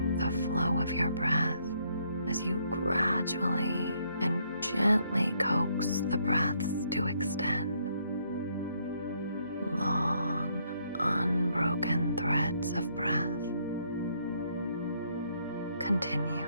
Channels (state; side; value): inverted; both; correlation -0.71